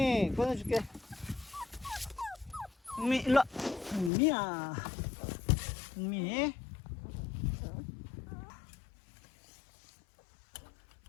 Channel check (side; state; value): right; drops out; at 4.1 s